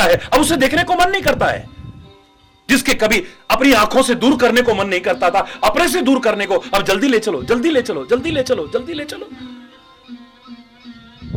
है, अब उसे देखने को मन नहीं करता है। जिसके कभी अपनी आंखों से दूर करने को मन नहीं करता था, अपने से दूर करने को अब जल्दी ले चलो, जल्दी ले चलो, जल्दी ले चलो, जल्दी ले चलो।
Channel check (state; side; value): identical; both; correlation 1.00